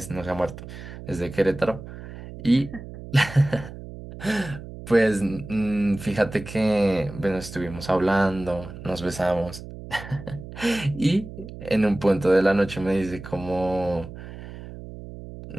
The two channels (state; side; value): noise; right; hum, 13 dB below the sound